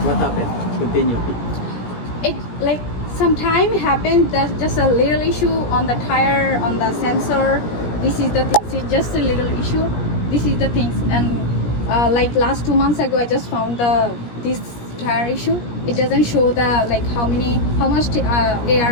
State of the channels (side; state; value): right; late; 17 ms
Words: what happened? Continue. It like sometime happened. There's just a little issue on the tire, on the sensor. This is the things. It's just a little issue. This is the things. And like last 2 months ago, I just found this tire issue. It doesn't show the like how much